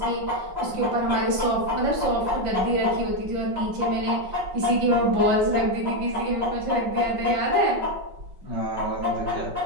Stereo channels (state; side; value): late; left; 5.3 ms